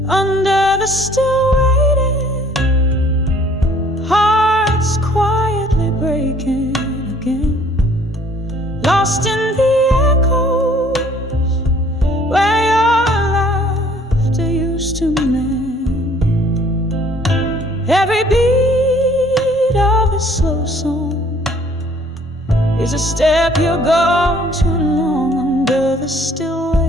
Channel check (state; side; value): normal; both; correlation 0.58